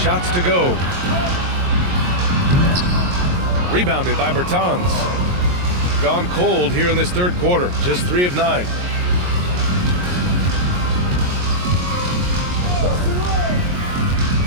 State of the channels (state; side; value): late; left; 22 ms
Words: to go. Rebounded by Bertans. Gone cold here in this third quarter. Just 3 of 9.